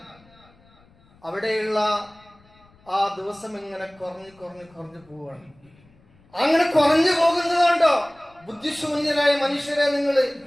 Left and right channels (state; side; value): noise; left; rumble, 30 dB below the sound